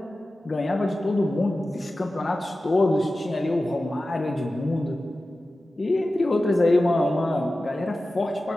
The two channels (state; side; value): normal; both; correlation 0.95